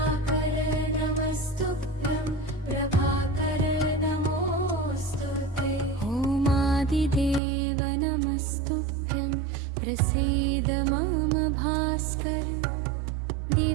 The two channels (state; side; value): drops out; left; at 7.4 s